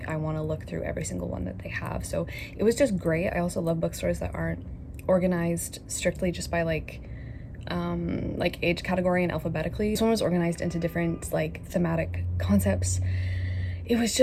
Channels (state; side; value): identical; both; correlation 1.00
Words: I want to look through every single one that they have. So it was just great. I also love bookstores that aren't organized strictly just by like age category and alphabetically. This one was organized into different like thematic concepts. It was